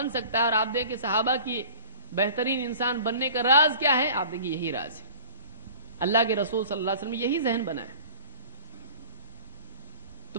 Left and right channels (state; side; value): inverted; both; correlation -0.44